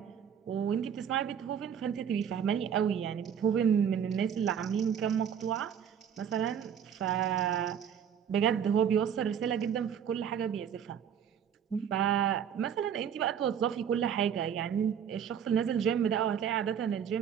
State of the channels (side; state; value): left; quieter; 8.3 dB